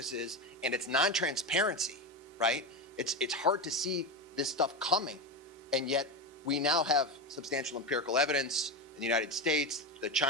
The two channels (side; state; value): both; normal; correlation 0.16